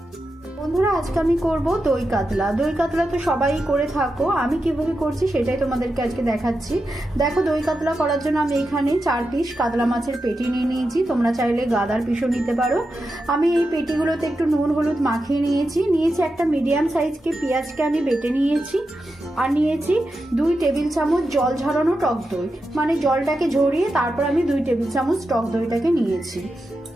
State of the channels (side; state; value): both; normal; correlation 0.89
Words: বন্ধুরা, আজকে আমি করব দই কাতলা। দই কাতলা তো সবাই করে থাকো, আমি কিভাবে করছি সেটাই তোমাদেরকে আজকে দেখাচ্ছি। দেখো, দই কাতলা করার জন্য আমি এখানে 4 পিস কাতলা মাছের পেটি নিয়ে নিয়েছি, তোমরা চাইলে গাদার পিসও নিতে পারো। আমি এই পেটিগুলোতে একটু নুন হলুদ মাখিয়ে নিয়েছি। একটা মিডিয়াম সাইজকে পেঁয়াজকে আমি বেটে নিয়েছি, আর নিয়েছি 2 টেবিল চামচ জল ঝরানো টক দই, মানে জলটাকে ঝরিয়ে তারপর আমি 2 টেবিল চামচ টক দইটাকে নিয়েছি।